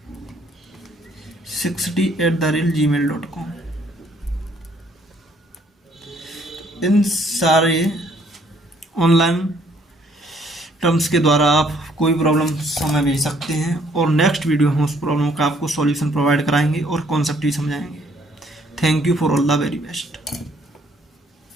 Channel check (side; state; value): both; normal; correlation 0.64